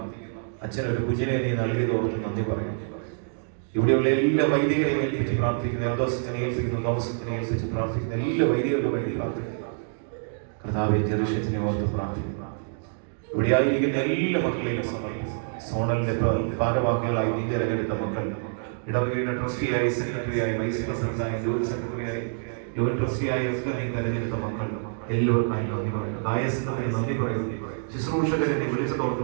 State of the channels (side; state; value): left; silent; digital silence